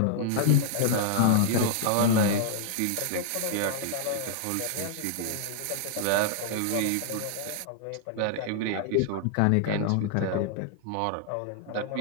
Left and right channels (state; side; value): different; both; correlation -0.01